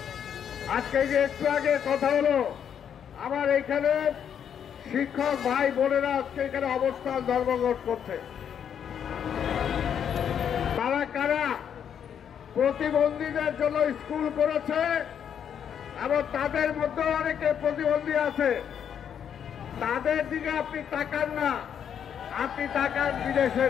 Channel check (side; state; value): right; quieter; 8.5 dB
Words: আজকে যে একটু আগে কথা হলো, আমার এখানে শিক্ষক ভাই বোনেরা আজকে এখানে অবস্থান ধর্মঘট করছে। তারা কারা? প্রতিবন্ধীদের জন্য স্কুল করেছে এবং তাদের মধ্যে অনেকে প্রতিবন্ধী আছে। তাদের দিকে আপনি তাকান না, আপনি তাকান